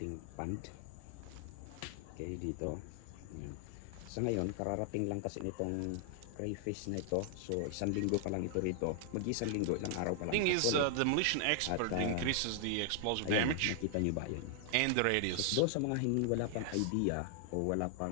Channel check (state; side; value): different; both; correlation 0.00